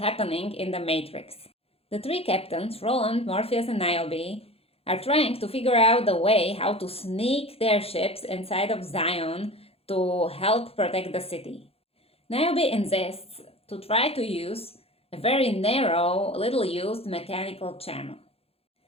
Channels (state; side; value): late; right; 0.29 ms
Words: in the Matrix. The 3 captains, Roland, Morpheus, and Niobe, are trying to figure out the way how to sneak their ships inside of Zion to help protect the city. Niobe insists to try to use a very narrow, little-used mechanical channel.